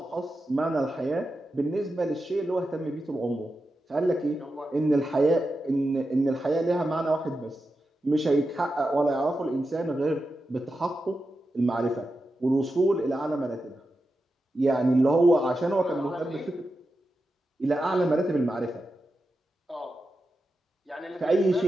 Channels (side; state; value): both; normal; correlation 0.90